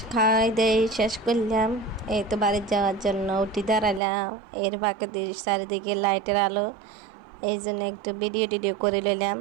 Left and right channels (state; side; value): drops out; left; at 4.0 s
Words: দেয় শেষ করলাম। এই তো বাড়ি যাওয়ার জন্য উঠি দাঁড়ালাম। এর ফাঁকে চারিদিকে লাইটের আলো, এই জন্য একটু ভিডিও টিডিও করে নিলাম।